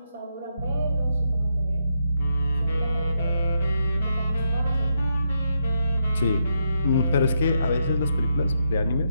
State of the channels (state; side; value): inverted; both; correlation -0.80